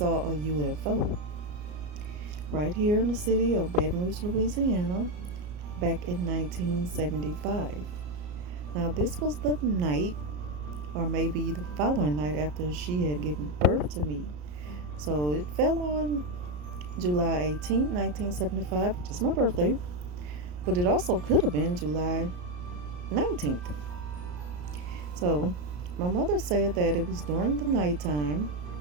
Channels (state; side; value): late; left; 34 ms